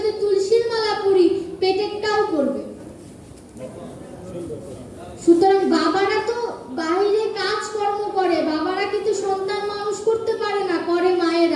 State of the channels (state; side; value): identical; both; correlation 1.00